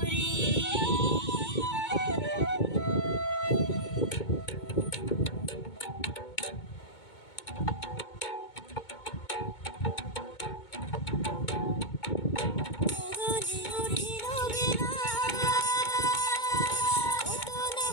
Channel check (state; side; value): late; right; 2.2 ms